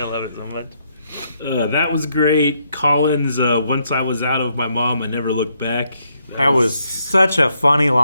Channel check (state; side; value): inverted; both; correlation -0.76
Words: love it so much. That was great. Colin's once I was out of my mom, I never looked back. That was such a funny